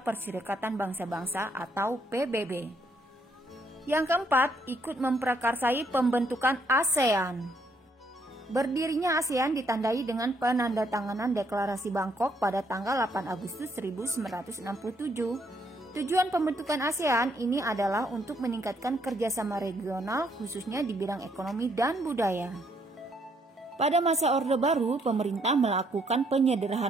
Bangsa-Bangsa atau PBB. Yang keempat, ikut memprakarsai pembentukan ASEAN. Berdirinya ASEAN ditandai dengan penandatanganan Deklarasi Bangkok pada tanggal 8 Agustus 1967. Tujuan pembentukan ASEAN ini adalah untuk meningkatkan kerjasama regional khususnya di bidang ekonomi dan budaya. Pada masa Orde Baru, pemerintah melakukan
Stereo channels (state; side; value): normal; both; correlation 0.71